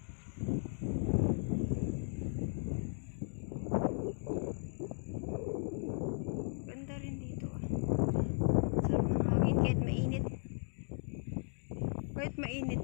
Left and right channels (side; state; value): right; silent; 54 dB below the other